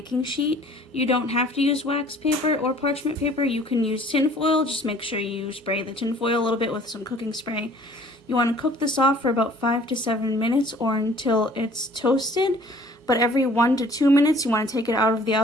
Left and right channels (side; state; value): both; normal; correlation 0.53